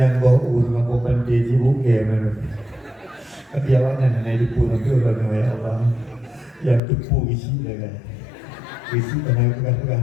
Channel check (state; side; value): drops out; right; at 6.8 s